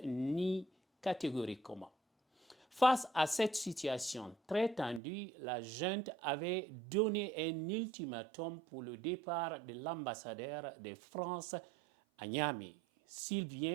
nie catégoriquement. Face à cette situation très tendue, la junte avait donné un ultimatum pour le départ de l'ambassadeur de France à Niamey,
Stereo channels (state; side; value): drops out; left; at 5.0 s